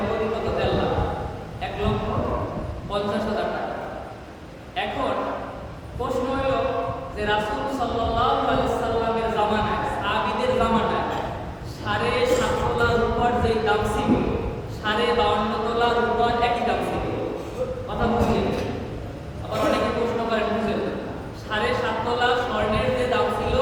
মূল্য কত? 1.5 লাখ, 1,50,000 টাকা। এখন প্রশ্ন হলো যে রাসূল সাল্লাল্লাহু আলাইহি সাল্লামের জামানায়, সাহাবীদের জামানায় 7.5 তোলা রূপার যে দাম ছিল 52.5 তোলা রূপার একই দাম ছিল। কথা বুঝলেন? আবার অনেকে প্রশ্ন করেন বুঝলেন 7.5 তোলা স্বর্ণের যে দাম ছিল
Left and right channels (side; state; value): both; identical; correlation 1.00